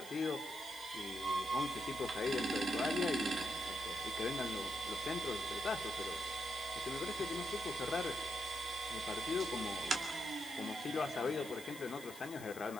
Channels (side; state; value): left; noise; hiss, 15 dB below the sound